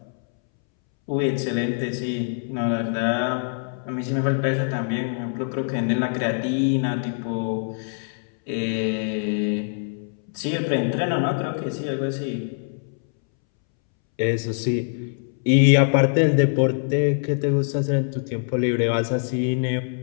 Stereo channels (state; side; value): silent; right; 63 dB below the other